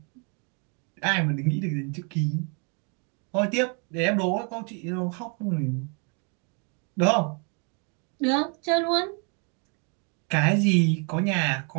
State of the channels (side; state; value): left; quieter; 36.8 dB